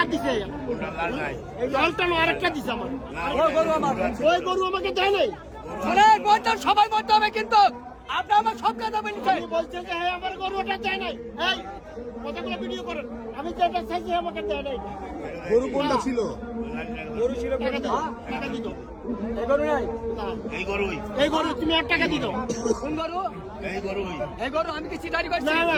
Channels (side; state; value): both; identical; correlation 1.00